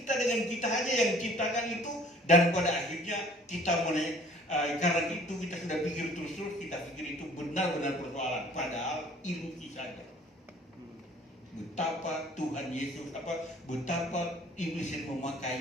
dengan kita aja yang ciptakan itu, dan pada akhirnya kita karena itu kita sudah pikir terus, kita pikir itu benar-benar persoalan, padahal ilusi saja. Betapa Tuhan Yesus, betapa iblis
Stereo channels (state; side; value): normal; both; correlation 0.53